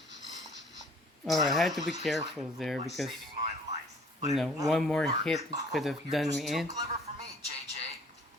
Alright, I had to be careful there because, Saving my life. you know, one more hit could have You're done just me too in. clever for me, JJ.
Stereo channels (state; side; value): normal; both; correlation 0.54